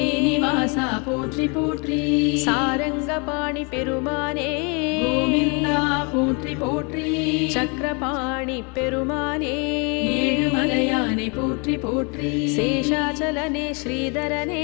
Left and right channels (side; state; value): right; quieter; 33.2 dB